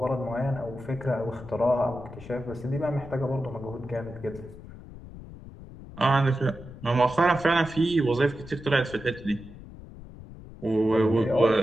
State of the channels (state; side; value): noise; left; rumble, 16 dB below the sound